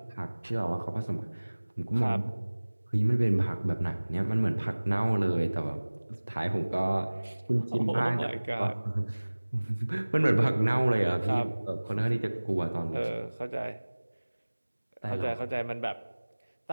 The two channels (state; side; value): inverted; both; correlation -1.00